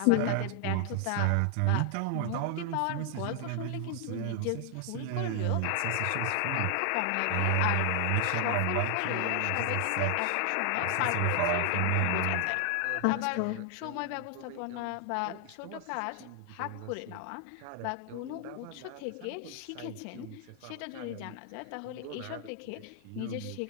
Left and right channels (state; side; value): different; both; correlation 0.00